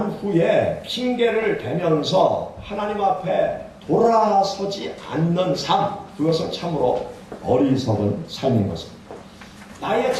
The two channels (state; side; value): identical; both; correlation 1.00